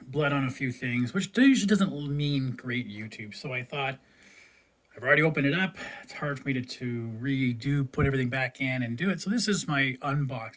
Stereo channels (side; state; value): both; identical; correlation 1.00